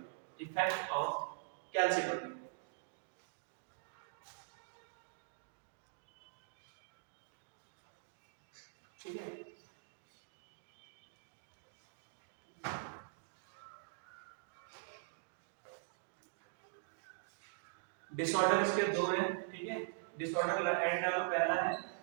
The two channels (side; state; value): left; silent; digital silence